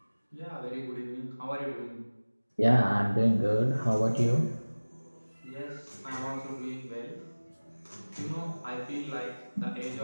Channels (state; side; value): inverted; both; correlation -1.00